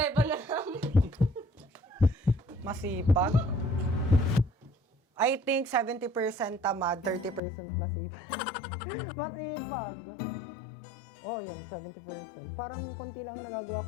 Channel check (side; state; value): right; drops out; at 7.4 s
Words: na lang. Masipag? I think 70% tamad, 30% masipag. Masipag! Oh, yun, 70%. Parang konti lang nagagawa